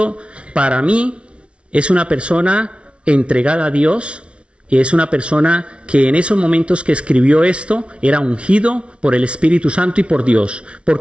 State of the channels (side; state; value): left; late; 0.060 ms